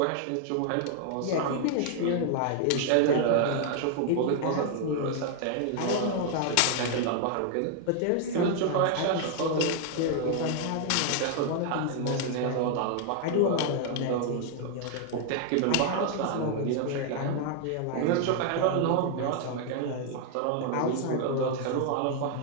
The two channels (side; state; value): both; different; correlation 0.00